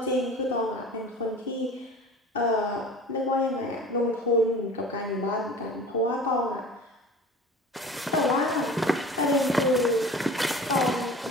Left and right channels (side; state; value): both; normal; correlation 0.40